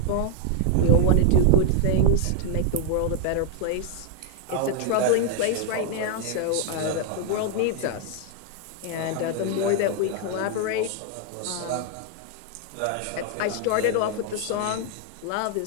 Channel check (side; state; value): both; different; correlation 0.00